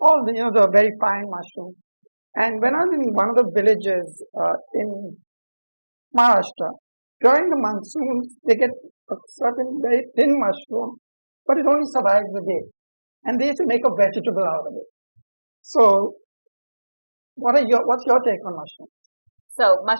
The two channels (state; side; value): inverted; both; correlation -1.00